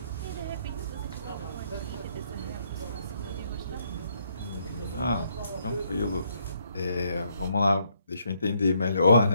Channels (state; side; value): inverted; both; correlation -0.72